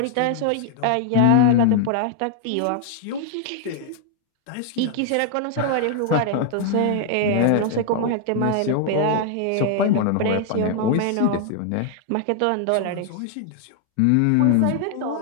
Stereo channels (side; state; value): both; different; correlation 0.00